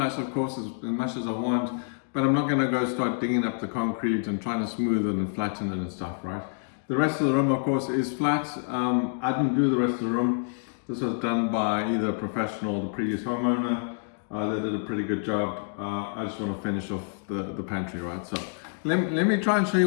of course, as much as I want, but I'm not going to go start digging up the concrete and trying to smooth it and flatten it and stuff, right? The rest of the room, of course, is flat. I didn't do the rest of the room. This was done by either a professional or the previous homeowner. They did a pretty good job. I just want to finish off the pantry, right? So let me try and show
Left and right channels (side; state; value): right; silent; digital silence